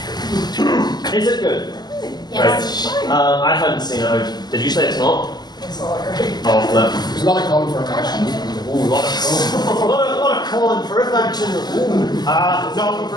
Is it good? Yes. Right. I hadn't seen it. Did you say it's not? It's all right. Oh, flip. There's a lot of calling for action. Ooh, a lot of calling for action. Ooh. No,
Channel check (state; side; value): late; right; 0.20 ms